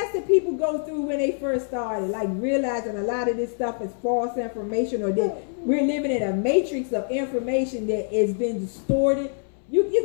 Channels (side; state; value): right; silent; 62 dB below the other